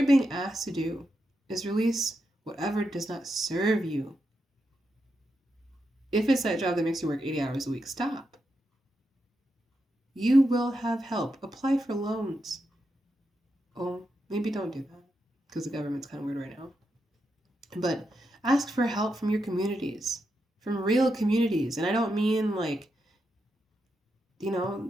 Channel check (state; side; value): normal; both; correlation 0.85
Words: being asked to do is release whatever does not serve you. If it's that job that makes you work 80 hours a week, stop. You will have help. Apply for loans. Oh, maybe don't do that because the government's kind of weird right now. But ask for help from your communities, from real communities. And I don't mean like,